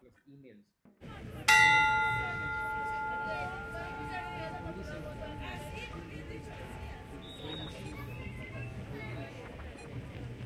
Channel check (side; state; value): both; identical; correlation 1.00